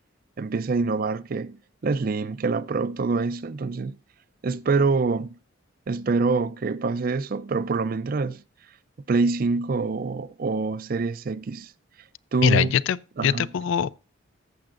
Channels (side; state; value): both; normal; correlation 0.38